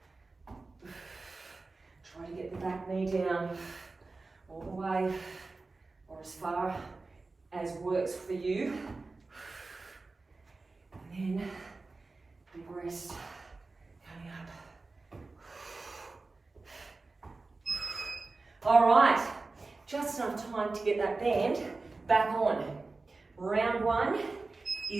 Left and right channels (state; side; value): quieter; left; 3.6 dB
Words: Try to get the back knee down all the way or as far as works for you. And then big rest coming up. All right, just enough time to get that band back on. Round one